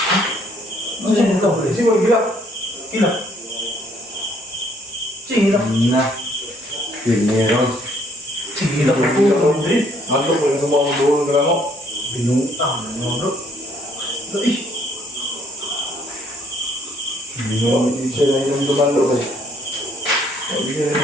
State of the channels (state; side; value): normal; both; correlation 0.65